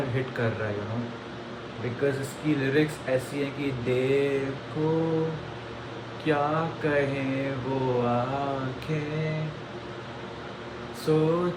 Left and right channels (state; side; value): identical; both; correlation 1.00